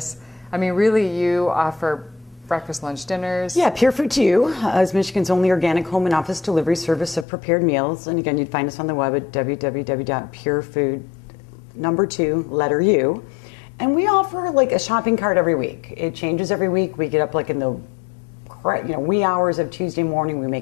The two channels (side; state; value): right; drops out; at 7.2 s